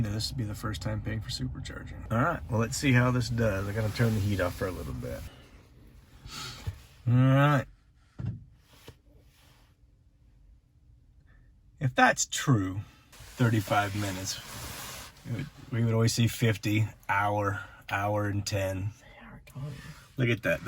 This would be the first time paying for supercharging. All right, well, let's see how this does. I gotta turn the heat off for a little bit. All right. If that's true, 35 minutes. We would always see 50, hour and 10. Look at that.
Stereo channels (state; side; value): identical; both; correlation 1.00